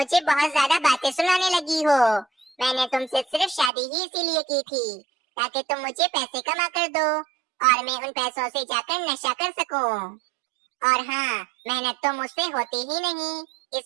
बहुत ज्यादा बातें सुनाने लगी हो। मैंने तुमसे सिर्फ शादी ही इसीलिए की थी ताकि तुम मुझे पैसे कमा कर दो और मैं उन पैसों से जाकर नशा कर सकूं। और हाँ, मेहनत तो मुझसे होती ही नहीं,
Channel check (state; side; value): drops out; left; at 3.7 s